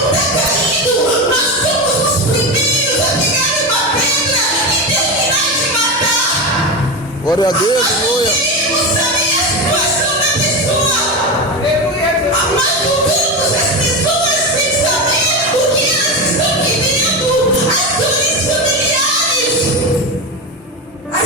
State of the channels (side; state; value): both; normal; correlation 0.18